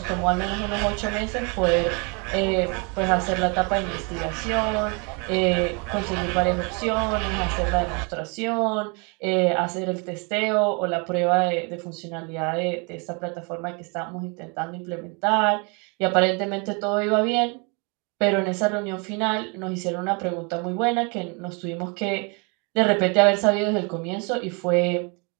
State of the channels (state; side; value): quieter; left; 32.8 dB